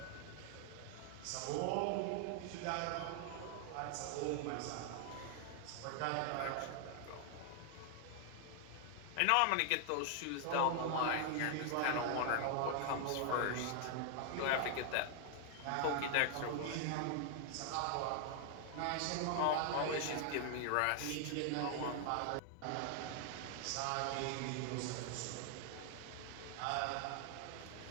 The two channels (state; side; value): different; both; correlation 0.00